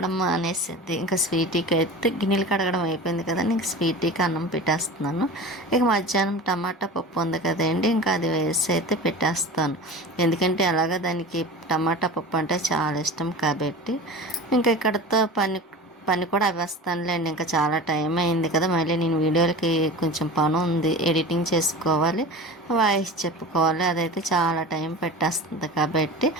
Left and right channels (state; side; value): normal; both; correlation 0.33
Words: మానేసింది. ఇంకా స్వీటీకి అయితే గిన్నెలు కడగడం అయిపోయింది కదండి, ఇంక స్వీటీకి అన్నం పెట్టేస్తున్నాను. ఇక మధ్యాహ్నం టమాటా పప్పు ఉంది కదండి, ఇంకా అది వేసి అయితే పెట్టేస్తాను. ఎందుకంటే అలాగా దానికి టమాటా పప్పు అంటే చాలా ఇష్టం కాబట్టి. ఇంకా ఇక్కడతో పని కూడా అవ్వేస్తానులేండి. ఇంకా చాలా టైం అయింది కదా, మళ్ళీ నేను వీడియోలకి కొంచెం పని ఉంది, ఎడిటింగ్ చేసుకోవాలి, వాయిస్ చెప్పుకోవాలి, అదైతే చాలా టైం పెట్టేస్తుంది కాబట్టి